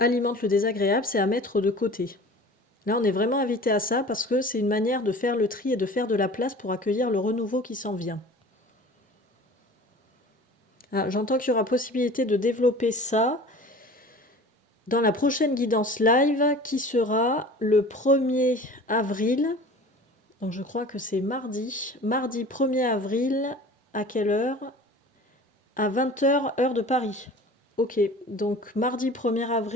le désagréable, c'est à mettre de côté. Là, on est vraiment invité à ça parce que c'est une manière de faire le tri et de faire de la place pour accueillir le renouveau qui s'en vient. Ah, j'entends qu'il y aura possibilité de développer ça dans la prochaine guidance live qui sera le 1er avril. Donc je crois que c'est mardi. Mardi 1er avril, à quelle heure? À 20h, heure de Paris. Ok, donc mardi 1er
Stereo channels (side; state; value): both; normal; correlation 0.41